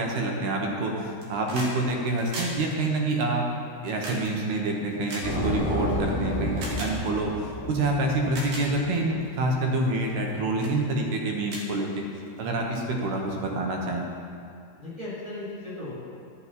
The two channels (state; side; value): late; left; 13 ms